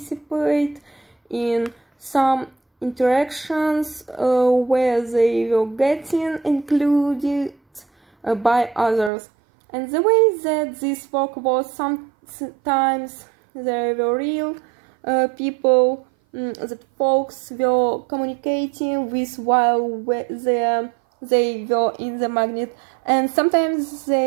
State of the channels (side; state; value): left; drops out; at 9.1 s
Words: in some interactions where they were getting included by others. And the way that this worked was, sometimes there were real people that folks were communicating with while they were in the magnet, and sometimes